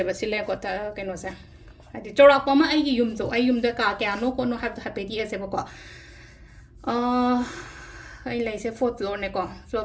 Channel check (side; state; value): both; identical; correlation 1.00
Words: बा सिले को ता कैनो से हाइदि चौरापा मा आइगी युम जो आई युम द का क्यानो को नो हाइपेदी एसे बा को आई लाइसे फोर्थ फ्लोर ने को